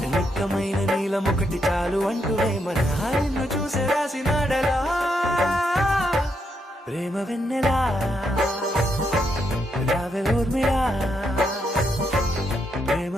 నిక్కమైన నీలమొకటి చాలు అంటూనే మన నిన్ను చూసే రాసినాడలా ప్రేమ వెన్నెలా రావే ఊర్మిళా ప్రేమ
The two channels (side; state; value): both; normal; correlation 0.79